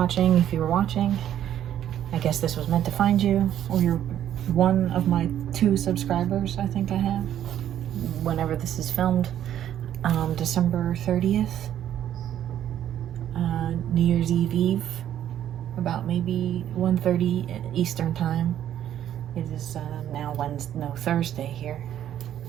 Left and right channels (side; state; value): left; quieter; 10.9 dB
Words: If you were watching, I guess this was meant to find you, or you're one of my 2 subscribers I think I have. Whenever this is filmed, December 30th, New Year's Eve, about maybe 1:30 Eastern Time. It is now Thursday here.